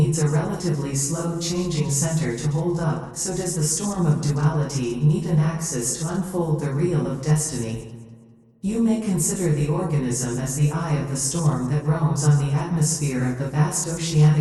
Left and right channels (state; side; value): identical; both; correlation 1.00